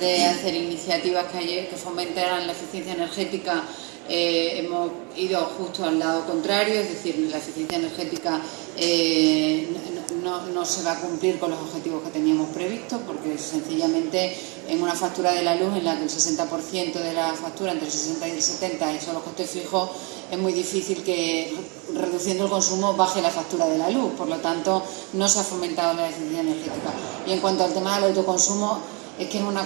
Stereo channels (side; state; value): left; quieter; 31.3 dB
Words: hacer iniciativas que fomentaran la eficiencia energética, hemos ido justo al lado contrario, es decir, la eficiencia energética no se va a cumplir con los objetivos que teníamos previstos, porque sencillamente en una factura de la luz en la que el 60% de la factura, entre el 60 y el 70, son los costes fijos, es muy difícil que reduciendo el consumo baje la factura de la luz. Por lo tanto, no se ha fomentado la eficiencia energética. Y en cuanto al tema del autoconsumo, es que es una